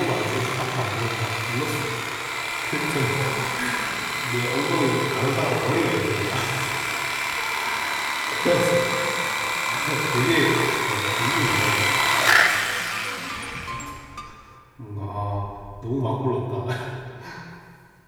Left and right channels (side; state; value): both; identical; correlation 1.00